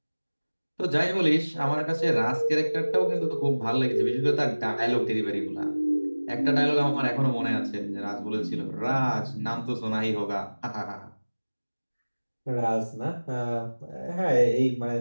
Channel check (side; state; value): both; inverted; correlation -1.00